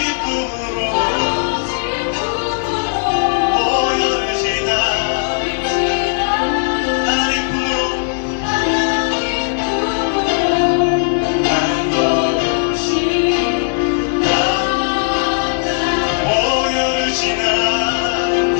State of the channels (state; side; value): silent; right; 68 dB below the other